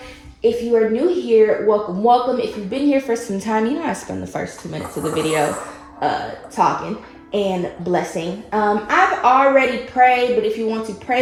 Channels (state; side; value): identical; both; correlation 1.00